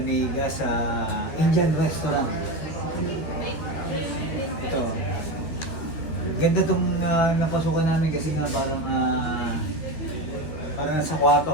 sa Indian restaurant. Ito. Ganda itong napasukan namin kasi nga parang nasa kwarto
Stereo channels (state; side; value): late; right; 13 ms